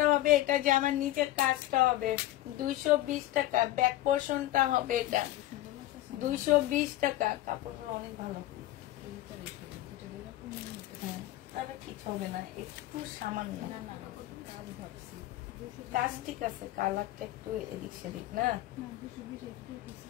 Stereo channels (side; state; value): right; quieter; 15.3 dB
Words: হবে, এটা জামার নিচের কাজটা হবে। 220 টাকা। ব্যাক পোর্শনটা হবে এটা 220 টাকা। কাপড়গুলো অনেক ভালো, তাহলে কিছু হবে না, একটু সামান্য কাজ ঠিক আছে। কালারটা একটু এদিক সেদিক না।